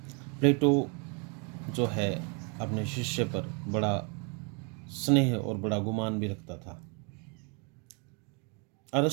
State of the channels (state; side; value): quieter; left; 34.9 dB